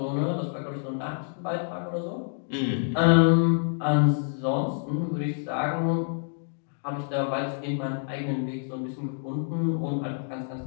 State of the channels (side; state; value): right; silent; digital silence